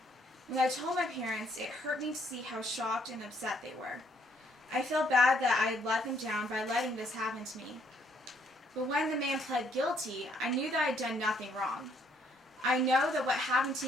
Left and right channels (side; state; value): both; normal; correlation 0.68